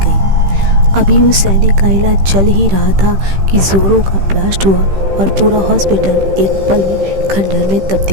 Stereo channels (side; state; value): left; late; 15 ms